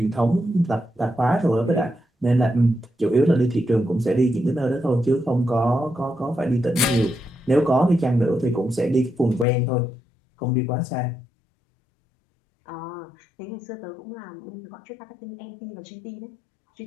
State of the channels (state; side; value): drops out; right; at 9.5 s